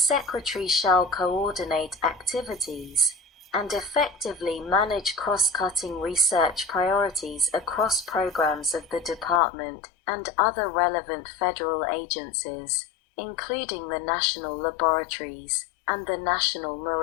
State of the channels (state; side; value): drops out; right; at 9.4 s